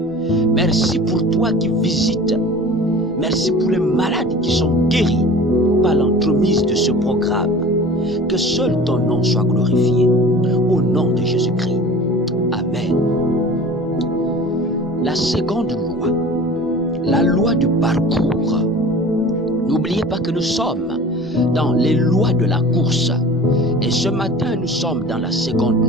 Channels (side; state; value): both; normal; correlation 0.41